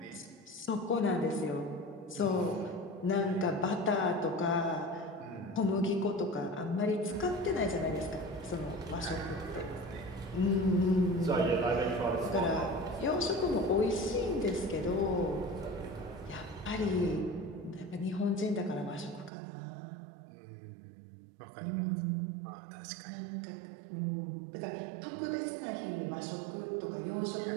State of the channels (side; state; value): left; drops out; at 19.3 s